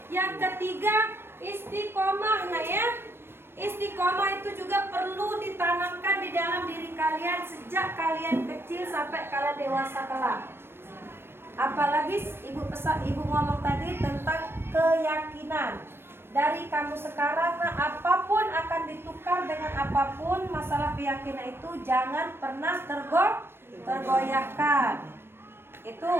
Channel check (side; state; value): left; late; 0.11 ms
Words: Yang ketiga, istiqomah ya. Istiqomah itu juga perlu ditanamkan di dalam diri kalian sejak kalian kecil sampai kalian dewasa kelak. Apalagi ibu ngomong tadi tentang keyakinan. Dari kamu sekarang, apapun akan ditukar dengan apapun, masalah keyakinan itu jangan pernah tergoyahkan. Itu